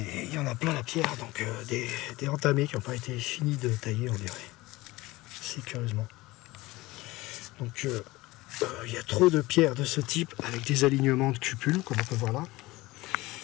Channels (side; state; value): right; quieter; 20.0 dB